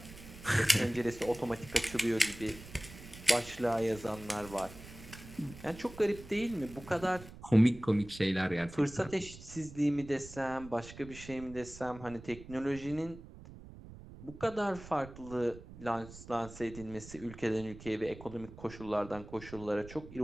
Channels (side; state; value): right; noise; rumble, 16 dB below the sound